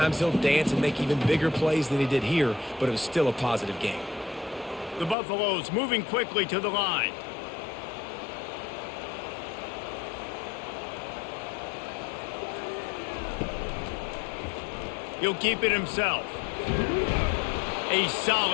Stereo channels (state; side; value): drops out; right; at 5.2 s